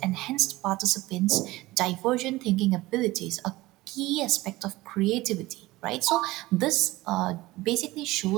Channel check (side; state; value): left; quieter; 19.1 dB